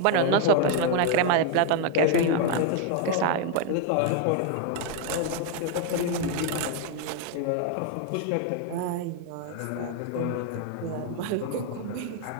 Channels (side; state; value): both; different; correlation 0.00